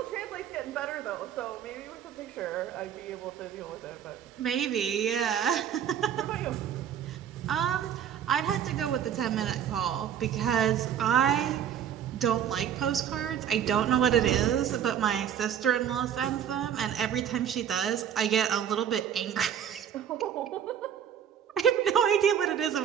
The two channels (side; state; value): left; quieter; 9.1 dB